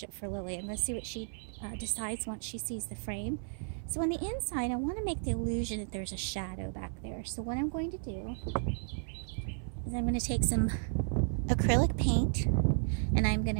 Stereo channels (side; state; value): left; silent; 55 dB below the other